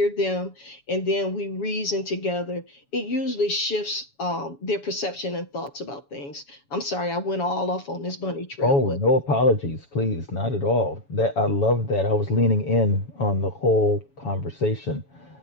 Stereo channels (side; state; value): right; late; 7.1 ms